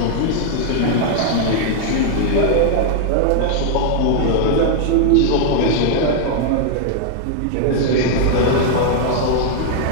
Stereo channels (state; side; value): different; both; correlation -0.01